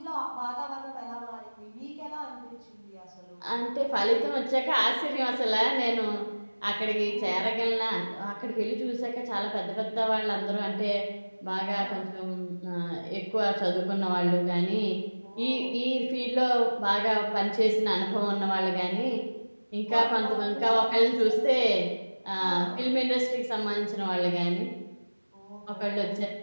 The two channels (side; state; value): both; inverted; correlation -1.00